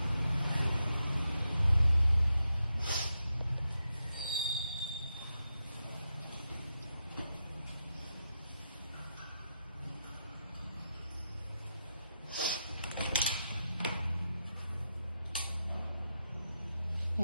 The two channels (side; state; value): both; inverted; correlation -0.86